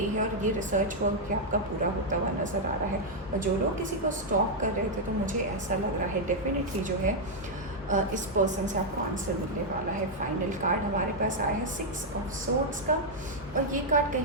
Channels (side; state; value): both; normal; correlation -0.02